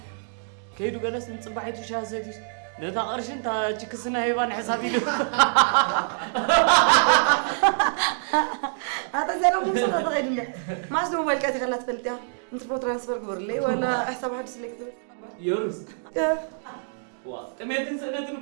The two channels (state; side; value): silent; left; digital silence